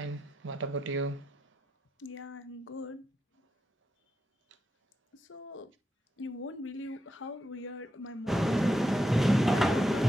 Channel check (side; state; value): both; normal; correlation 0.85